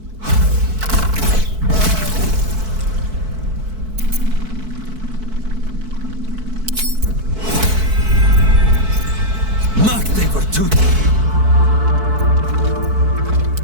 They were too...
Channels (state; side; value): late; left; 4.6 ms